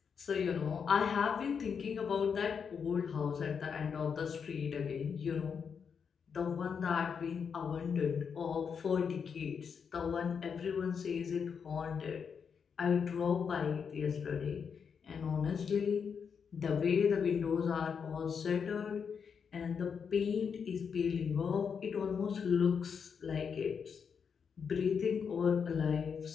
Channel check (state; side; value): quieter; right; 6.5 dB